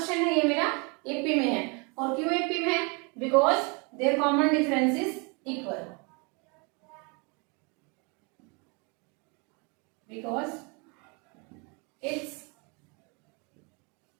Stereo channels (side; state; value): left; quieter; 32.1 dB